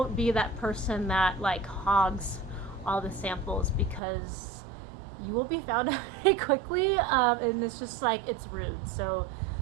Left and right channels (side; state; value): left; drops out; at 4.0 s